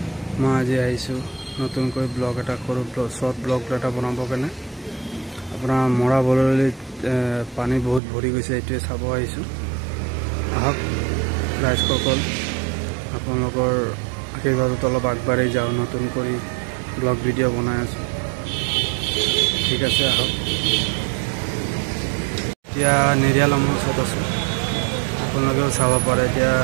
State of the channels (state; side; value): drops out; left; at 8.0 s